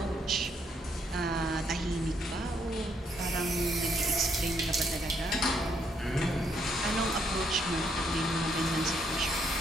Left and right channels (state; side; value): normal; both; correlation 0.72